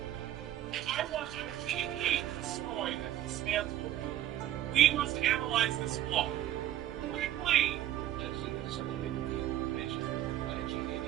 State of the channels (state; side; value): quieter; left; 12.8 dB